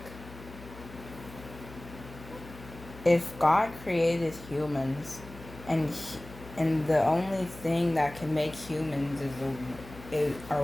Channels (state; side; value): noise; left; hum, 16 dB below the sound